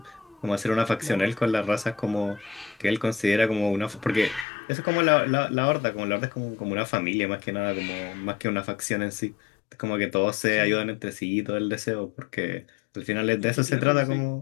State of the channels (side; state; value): right; drops out; at 4.5 s